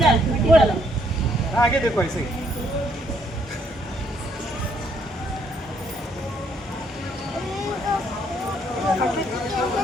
आगे देखो ऐसे ही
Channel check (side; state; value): both; normal; correlation 0.69